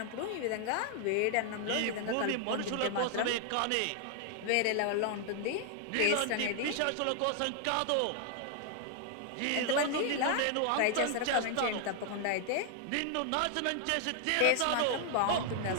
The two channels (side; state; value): both; different; correlation 0.00